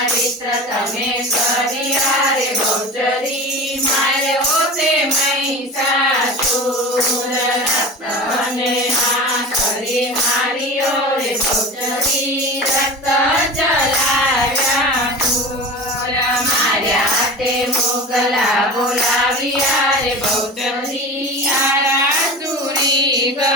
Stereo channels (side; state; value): both; normal; correlation 0.32